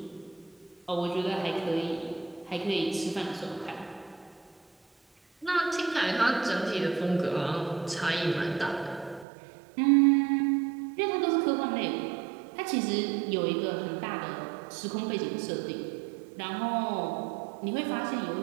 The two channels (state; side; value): drops out; left; at 9.2 s